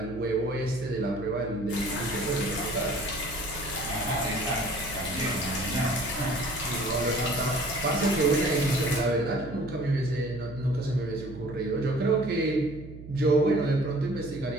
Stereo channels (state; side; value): noise; right; hum, 14 dB below the sound